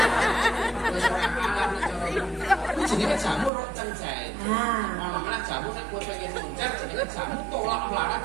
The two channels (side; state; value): left; drops out; at 3.5 s